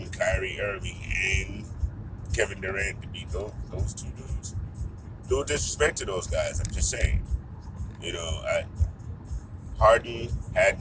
Kyrie Irving, and Kevin Durant to beat those two dudes? No disrespect to those guys. I'm just saying. Harden had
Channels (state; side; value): identical; both; correlation 1.00